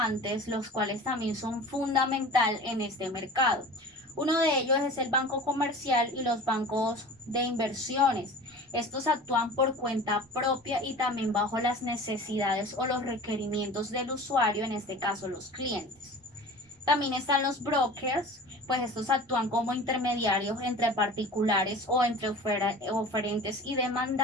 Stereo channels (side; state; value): both; normal; correlation 0.38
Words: los cuales también son fundamental en este mercado. Uno de ellos es el banco comercial y los bancos de inversiones. Estos actúan por cuenta propia y también bajo las necesidades o los requerimientos del usuario, en este caso los clientes. También están los brokers, pues estos actúan como intermediarios entre particulares o entre oferentes y